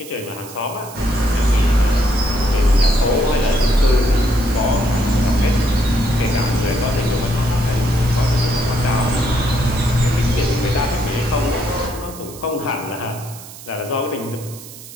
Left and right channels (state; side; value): noise; right; hiss, 16 dB below the sound